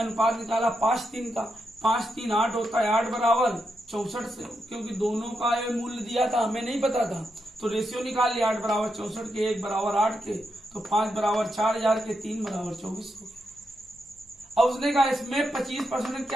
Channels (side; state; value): both; normal; correlation 0.84